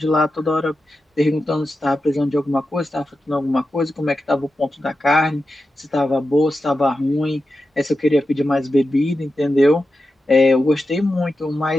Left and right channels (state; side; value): normal; both; correlation 0.91